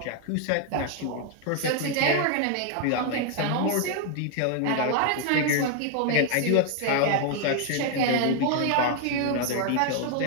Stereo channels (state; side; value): different; both; correlation 0.00